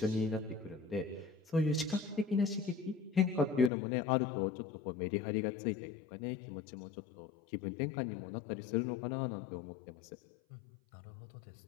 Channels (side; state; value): right; drops out; at 3.7 s